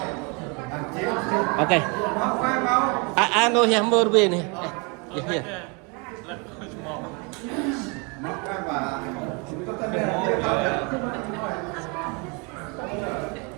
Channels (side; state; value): left; quieter; 31.8 dB